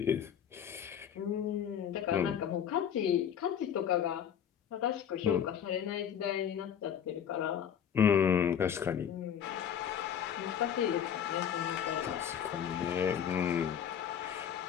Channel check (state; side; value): quieter; right; 8.7 dB